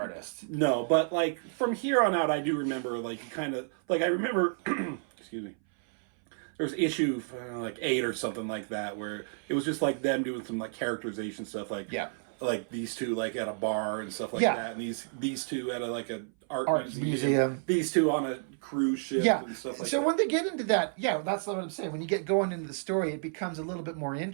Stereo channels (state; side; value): silent; left; 57 dB below the other